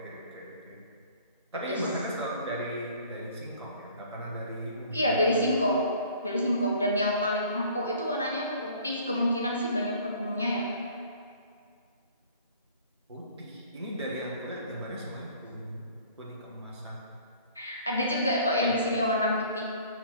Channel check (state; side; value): inverted; both; correlation -0.52